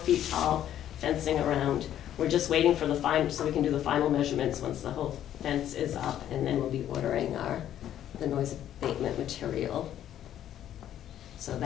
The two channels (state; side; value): quieter; right; 11.2 dB